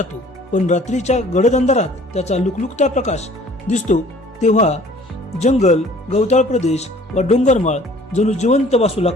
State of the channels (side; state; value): both; normal; correlation 0.52